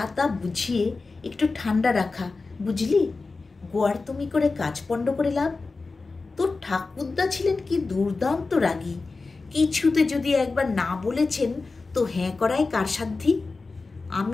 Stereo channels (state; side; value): quieter; right; 3.9 dB